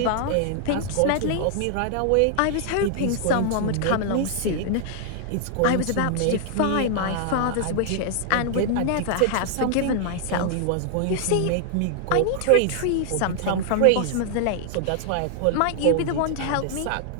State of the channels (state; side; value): different; both; correlation -0.01